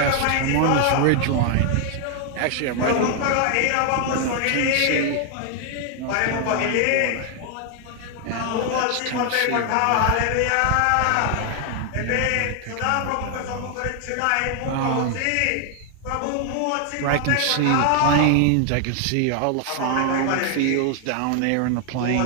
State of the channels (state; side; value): different; both; correlation 0.00